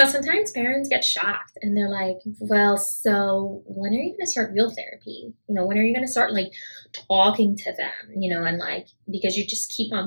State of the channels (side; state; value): both; inverted; correlation -1.00